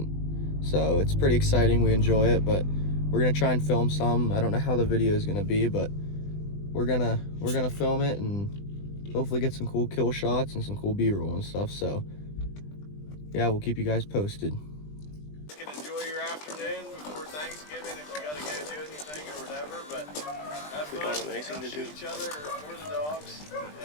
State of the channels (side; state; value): right; late; 20 ms